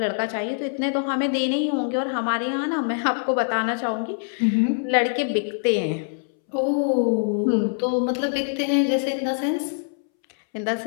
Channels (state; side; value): silent; right; 63 dB below the other